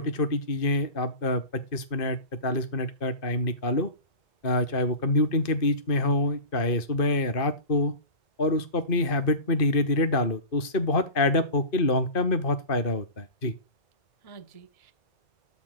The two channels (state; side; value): late; right; 2.5 ms